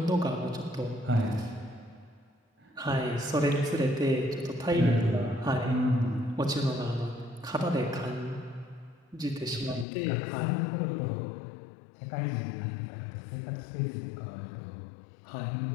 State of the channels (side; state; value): right; drops out; at 9.9 s